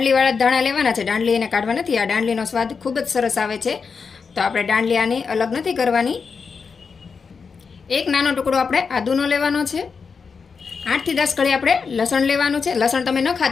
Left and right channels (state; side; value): quieter; right; 5.4 dB